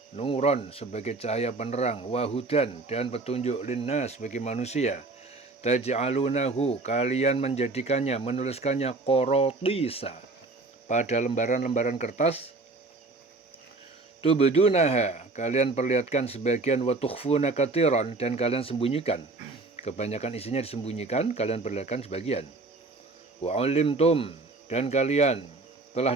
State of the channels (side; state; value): left; quieter; 3.4 dB